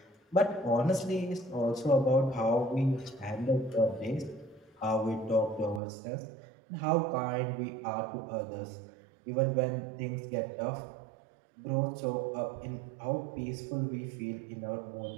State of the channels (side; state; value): left; drops out; at 5.8 s